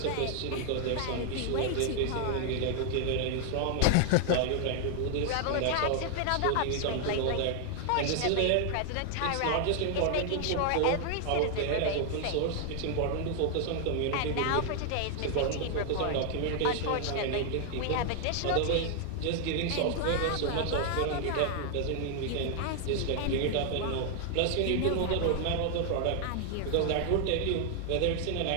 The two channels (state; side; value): different; both; correlation 0.00